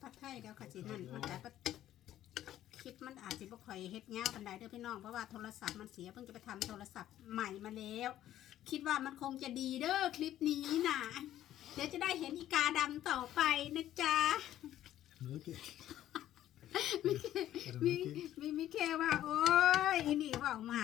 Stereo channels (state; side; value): quieter; right; 12.6 dB